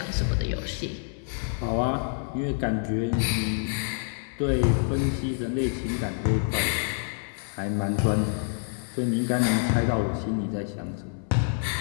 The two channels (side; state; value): right; silent; 60 dB below the other